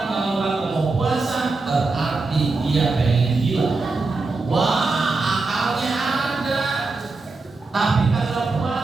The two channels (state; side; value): quieter; left; 3.7 dB